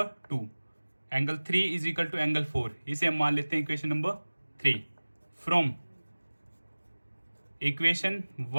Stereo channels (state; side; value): inverted; both; correlation -1.00